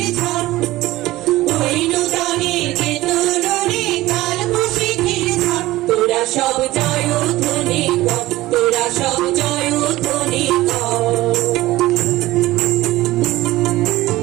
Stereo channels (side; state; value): left; quieter; 17.5 dB